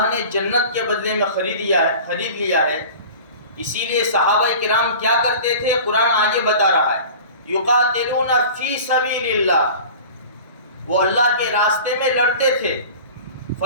نے جنت کے بدلے میں خرید لیا ہے. اسی لیے صحابہ کرام کیا کرتے تھے؟ قرآن آگے بتا رہا ہے یقاتلون فی سبیل اللہ، وہ اللہ کے راستے میں لڑتے تھے.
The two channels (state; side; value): inverted; both; correlation -0.39